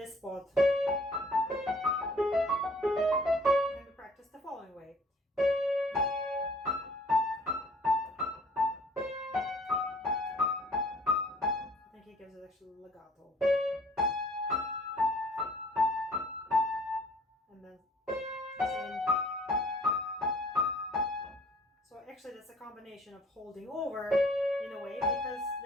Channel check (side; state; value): both; normal; correlation 0.55